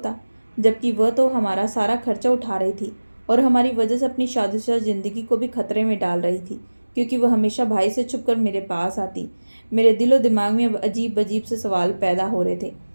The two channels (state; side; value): inverted; both; correlation -1.00